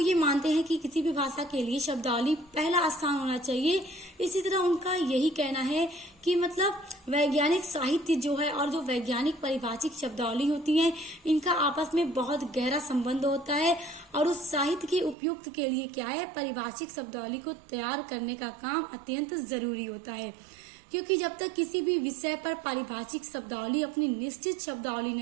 मानते हैं कि किसी भी भाषा के लिए शब्दावली पहला स्थान होना चाहिए, इसी तरह उनका यही कहना है कि मतलब वैज्ञानिक साहित्य जो है और जो वैज्ञानिक पारिभाषिक शब्दावली होती है, इनका आपस में बहुत गहरा संबंध होता है, और उस साहित्य के उपयुक्त के लिए क्या है, पारिभाषिक शब्दावली को तैयार करने का काम अत्यंत जरूरी होता है। क्योंकि जब तक किसी भी विषय पर पारिभाषिक शब्दावली अपनी निश्चित शब्दावली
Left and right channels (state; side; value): drops out; left; at 15.2 s